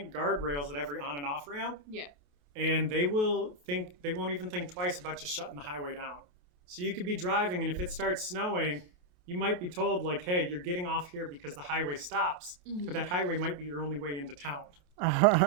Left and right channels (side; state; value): left; late; 28 ms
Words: guardrails at every on and off ramp. Yeah. And they won't even think twice about just shutting the highway down. So you could be driving, and if it starts snowing, you might be told, like, hey, you're getting off here because the highway stops, but that highway might be your only way into town.